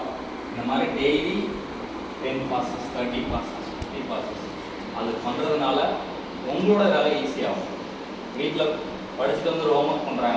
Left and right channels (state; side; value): identical; both; correlation 1.00